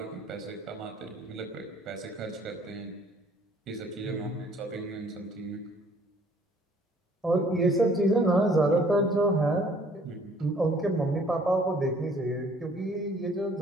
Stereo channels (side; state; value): both; normal; correlation 0.58